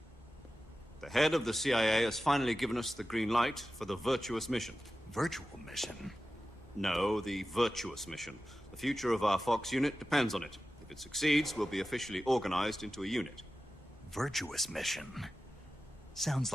The head of the CIA has finally given us the green light for the virtuous mission. Virtual mission? No, the virtuous mission. The future of our Fox unit depends on it. If it succeeds, we'll be officially organized into a unit. Virtuous mission? Sounds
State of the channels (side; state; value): both; normal; correlation 0.94